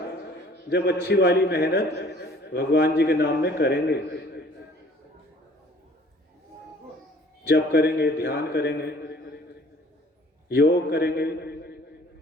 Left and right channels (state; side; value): normal; both; correlation 0.54